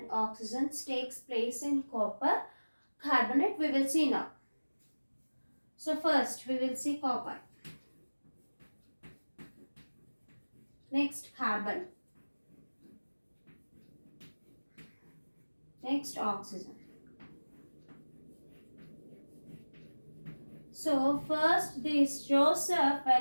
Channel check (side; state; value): both; inverted; correlation -1.00